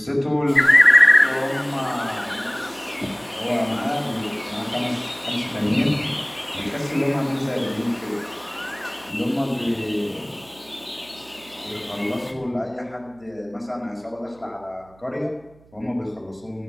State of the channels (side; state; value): right; noise; hum, 28 dB below the sound